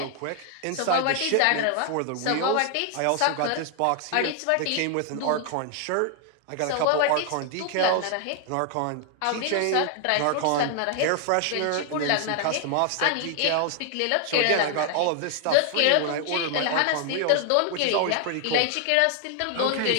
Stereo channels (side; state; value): both; different; correlation 0.00